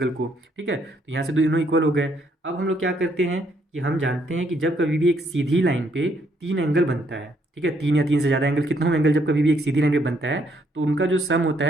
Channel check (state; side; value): normal; both; correlation 0.70